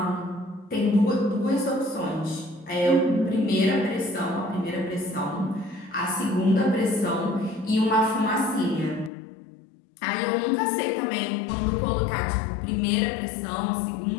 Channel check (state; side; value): drops out; right; at 9.1 s